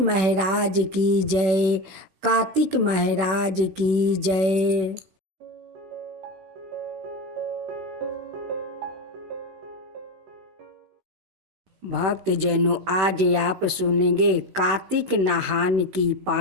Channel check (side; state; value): left; late; 16 ms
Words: की जय, कार्तिक महाराज की जय। भक्तजनों, आज आप सुनेंगे कार्तिक नहान की